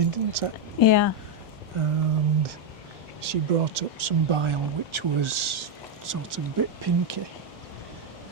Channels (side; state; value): both; normal; correlation 0.03